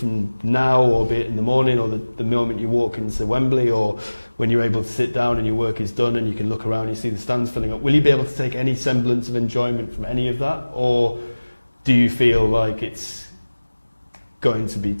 now, or be it in the morning, or the moment you walk into Wembley, or when you're able to sit down and your work is done and you can look around and you see the stands filling up. Will you be able to take any semblance of enjoyment from any of that, or do you feel like it's going to be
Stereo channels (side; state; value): both; inverted; correlation -1.00